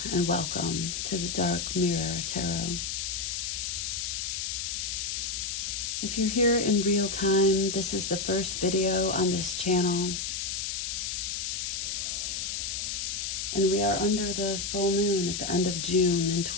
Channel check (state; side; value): noise; left; hiss, 2 dB below the sound